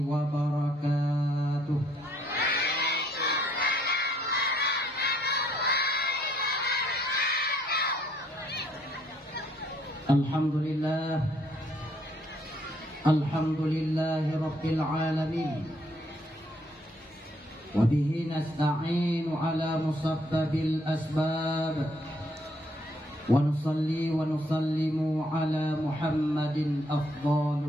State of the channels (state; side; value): normal; both; correlation 0.68